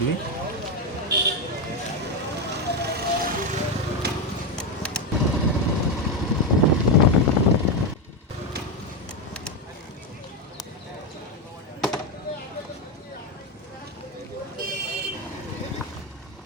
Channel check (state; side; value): normal; both; correlation 0.09